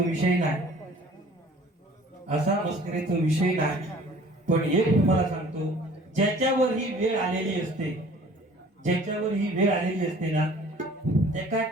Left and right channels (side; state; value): both; normal; correlation 0.50